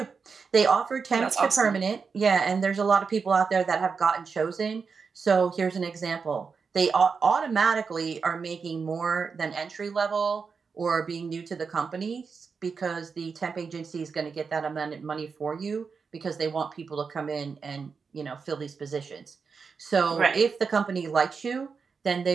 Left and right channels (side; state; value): left; quieter; 5.3 dB